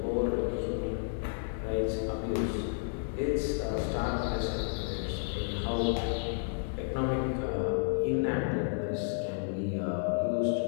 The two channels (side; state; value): right; silent; 57 dB below the other